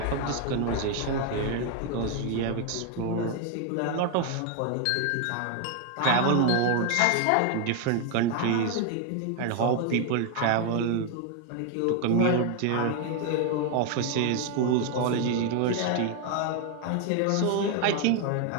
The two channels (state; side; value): different; both; correlation 0.01